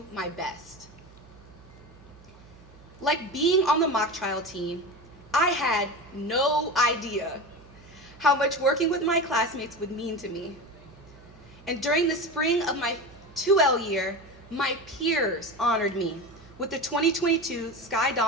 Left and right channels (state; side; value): noise; right; hum, 23 dB below the sound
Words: my best. Like being on the mock trial team, I had no idea how much working with my classmates would mean to me. And during the spring of my 2L year, my peers honored me with the 2022 Sky